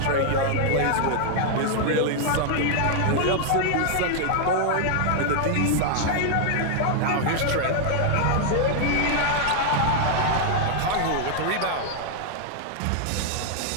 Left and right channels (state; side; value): different; both; correlation 0.00